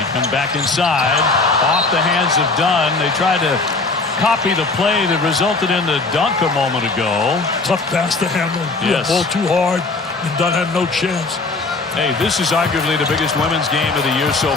come back inside. Off the hands of Dunn. They tried to copy the play that resulted in the dunk a moment ago. Tough pass to handle. Yes. Ball too hard, and Dunn had no chance. Hey, this is arguably the biggest women's game of the year so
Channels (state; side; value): quieter; right; 3.7 dB